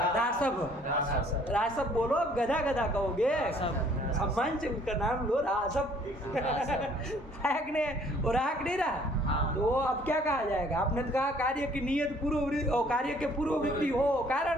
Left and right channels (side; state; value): both; normal; correlation 0.59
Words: रासब। रासब बोलो, अब गधा गधा कहोगे, सम्मान से उसका नाम लो, रासब। है कि नहीं? वो रहा कि नहीं रहा? तो अब क्या कहा जाएगा? आपने तो कहा कार्य की नियत पूर्ववृत्ति और कार्य के पूर्ववृत्ति हो